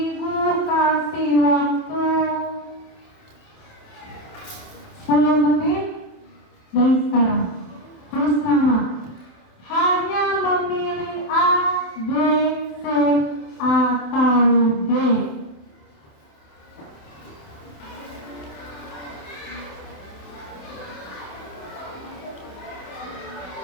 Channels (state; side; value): late; right; 27 ms